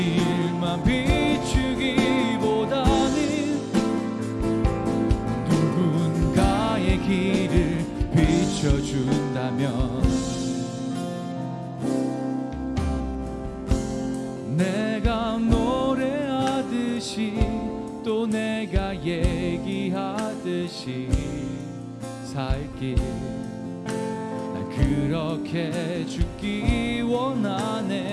비추기보다는 누군가의 길을 비춰준다면 내가 노래하듯이 또 내가 얘기하듯이 살길, 난 그렇게 죽기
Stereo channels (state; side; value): identical; both; correlation 1.00